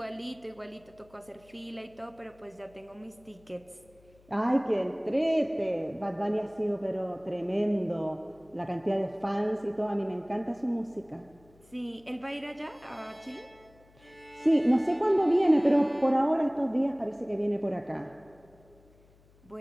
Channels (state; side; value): noise; left; hum, 29 dB below the sound